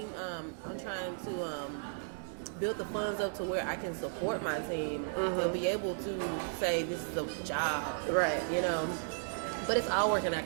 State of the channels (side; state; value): left; silent; digital silence